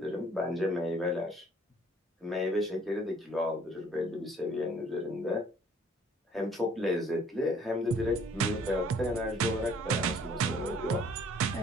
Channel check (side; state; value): both; normal; correlation 0.58